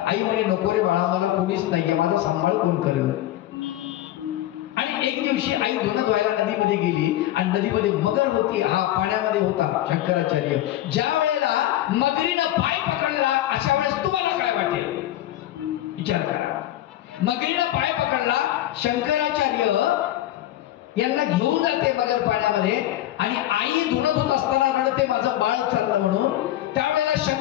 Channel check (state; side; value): quieter; right; 13.9 dB